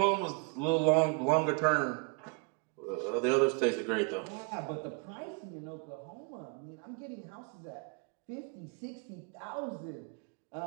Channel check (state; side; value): quieter; left; 35.6 dB